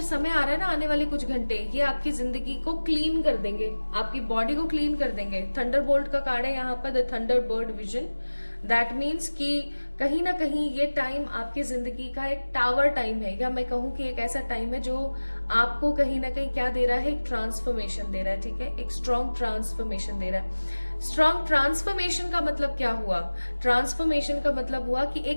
समय आ रहा है ना आने वाले कुछ घंटे, ये आपकी जिंदगी को क्लीन कर देंगे, आपकी बॉडी को क्लीन कर देंगे। थंडरबोल्ट का कार्ड है यहाँ पर, the Thunderbird vision. That means कि कहीं ना कहीं ये टाइम आपकी जिंदगी का एक टावर टाइम है, या मैं कहूँ कि एक ऐसा टाइम है जो आपको कहीं ना कहीं क्या दे रहा है, एक ट्रांसफॉर्मेशन दे रहा है, ठीक है, एक स्ट्रॉन्ग ट्रांसफॉर्मेशन दे रहा है। स्ट्रॉन्ग ट्रांसफॉर्मेशन का मतलब क्या हुआ? ट्रांसफॉर्मेशन का मतलब हुआ कि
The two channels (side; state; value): both; inverted; correlation -1.00